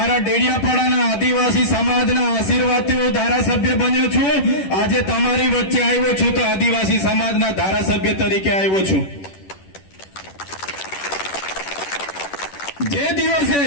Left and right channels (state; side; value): late; right; 10 ms